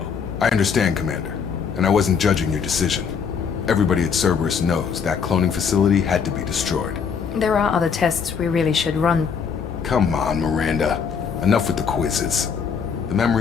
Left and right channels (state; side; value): quieter; right; 6.4 dB